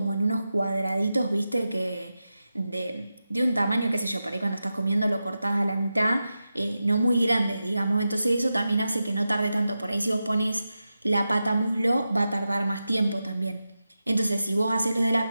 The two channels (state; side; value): inverted; both; correlation -0.92